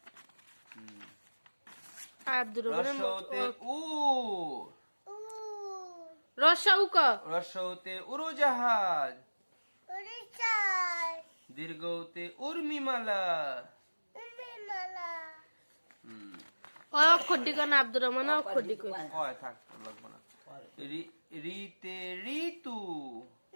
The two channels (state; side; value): inverted; both; correlation -1.00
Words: আব্দুর রসৌতে উট রসাউক রসৌতে উড়োজাহাজ দীর্ঘতে উর্মিমালা অক্ষর দিকে না আব্দুর রহমান অক্ষর দিকে কয় থাক লাগবে না রিতে ঋতু